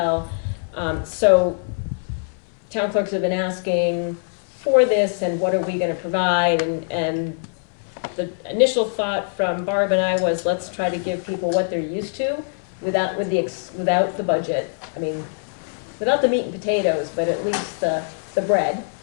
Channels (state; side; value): silent; right; 61 dB below the other